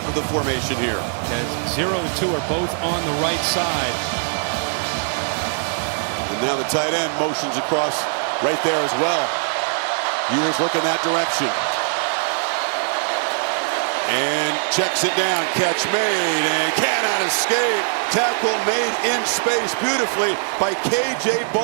of the formation here. Yeah, 0 and 2 are both on the right side. And now the tight end motions across right there as well. Ewers looking that direction. And checks it down. Catch made and cannot escape. Tackle made in space beautifully by K.J.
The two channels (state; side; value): silent; left; digital silence